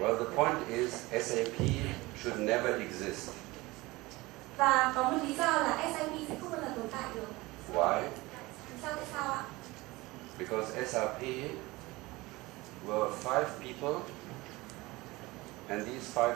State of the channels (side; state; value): left; quieter; 21.4 dB